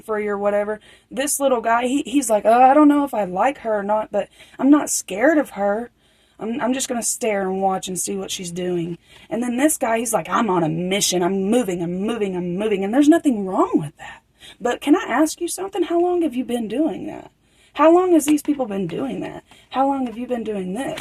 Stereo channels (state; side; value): identical; both; correlation 1.00